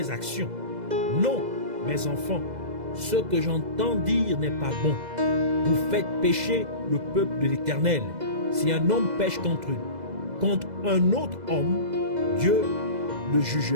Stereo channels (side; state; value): left; late; 2.0 ms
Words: actions. Non, mes enfants, ce que j'entends dire n'est pas bon. Vous faites pécher le peuple de l'Éternel. Si un homme pêche contre un autre homme, Dieu le